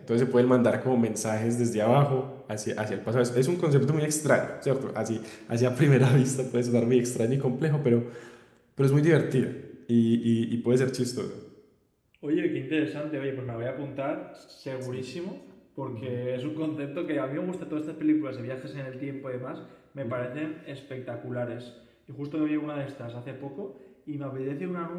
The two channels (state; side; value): identical; both; correlation 1.00